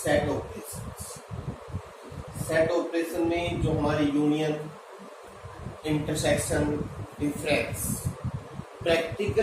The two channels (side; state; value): both; identical; correlation 1.00